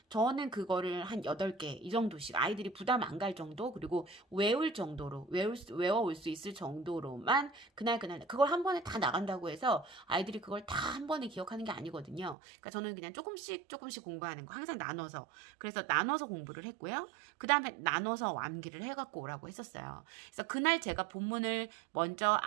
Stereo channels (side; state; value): left; drops out; at 12.4 s